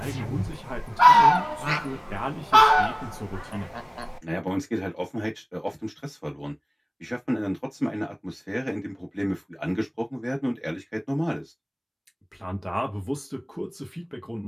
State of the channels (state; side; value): identical; both; correlation 1.00